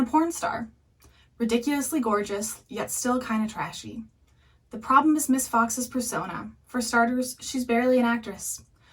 porn star. Ridiculously gorgeous, yet still kinda trashy. The problem is Miss Fox's persona. For starters, she's barely an actress.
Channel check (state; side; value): identical; both; correlation 1.00